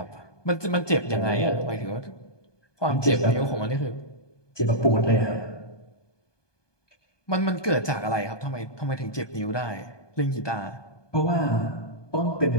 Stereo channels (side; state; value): right; late; 1.2 ms